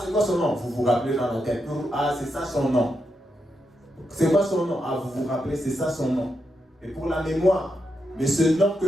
c'est quoi son nom? Vous vous rappelez dans la tête. Ah, c'est ça son nom. C'est quoi son nom? Ah, vous vous rappelez, c'est ça son nom. Et pour la mémoire. Mais ce nom que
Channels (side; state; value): both; normal; correlation 0.84